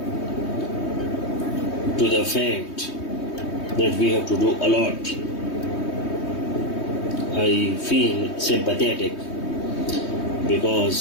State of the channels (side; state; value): right; late; 3.2 ms